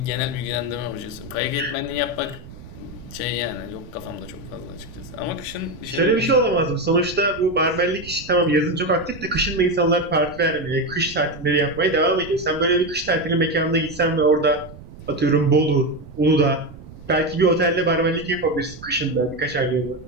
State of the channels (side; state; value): right; noise; rumble, 17 dB below the sound